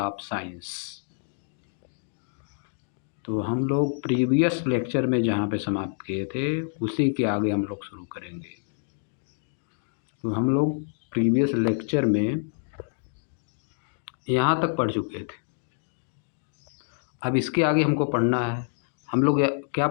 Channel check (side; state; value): right; silent; digital silence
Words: science. तो हम लोग प्रीवियस लेक्चर में जहाँ पे समाप्त किए थे उसी के आगे हम लोग शुरू करेंगे। तो हम लोग प्रीवियस लेक्चर में यहाँ तक पढ़ चुके थे। अब इसके आगे हमको पढ़ना है। हम लोग क्या